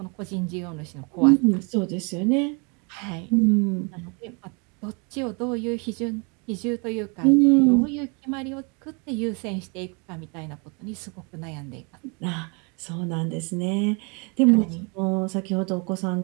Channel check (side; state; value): left; quieter; 33.2 dB